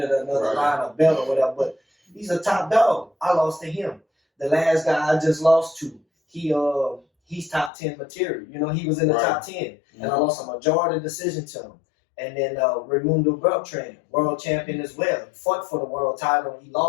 another line of belt or whatever, but he's a top dog. I lost to him. The last guy I just lost to, he's top 10 material. You know, he was in the top 10. And I lost a majority decision to him. And then Raimundo Beltran, world champion as well. He fought for the world title. He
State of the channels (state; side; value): drops out; right; at 7.7 s